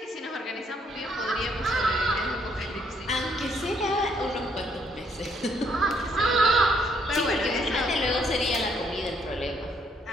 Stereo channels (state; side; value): normal; both; correlation 0.69